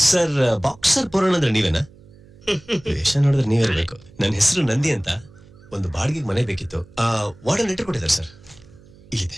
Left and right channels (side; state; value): right; noise; hum, 25 dB below the sound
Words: ಸರ್. ಬಾಕ್ಸರ್ ಪುರಾಣ ಅಂದ್ರೆ ನೀವೇನಾ? ವೇಷ ನೋಡಿದ್ರೆ ನೀವಿರ್ಬೇಕು. ನನ್ನ ಹೆಸರು ನಂದಿ ಅಂತ. ಒಂದು ಬಾಡಿಗೆ ಮನೆ ಬೇಕಿತ್ತು. ವಾರ್ಡನ್ ಲೆಟರ್ ಕೊಟ್ಟಿದ್ದಾರೆ ಸರ್,